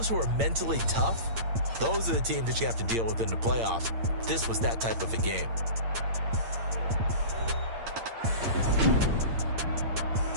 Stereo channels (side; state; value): left; late; 8.8 ms